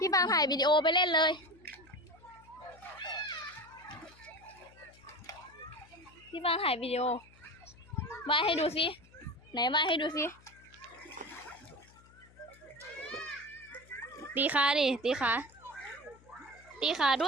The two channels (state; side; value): noise; left; hum, 25 dB below the sound